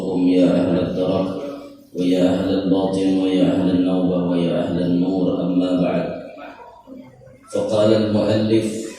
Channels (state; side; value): identical; both; correlation 1.00